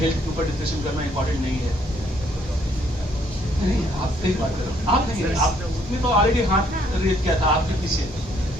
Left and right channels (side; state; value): both; normal; correlation 0.67